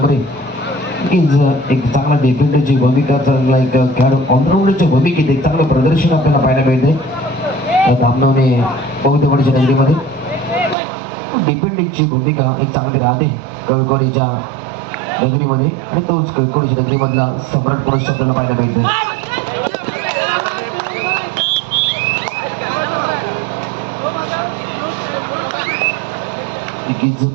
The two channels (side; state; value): left; drops out; at 10.8 s